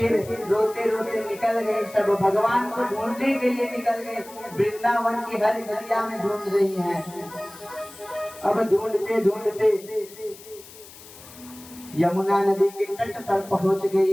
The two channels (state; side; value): noise; left; hiss, 19 dB below the sound